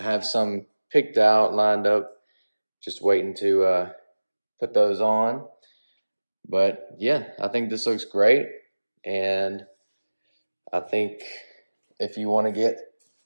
have some picked out, lined up, just waiting to put those on. But yeah, I think this looks great, and I think if you want to get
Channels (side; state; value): both; inverted; correlation -1.00